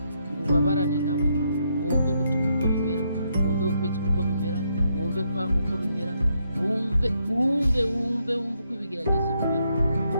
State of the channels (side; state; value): both; inverted; correlation -0.77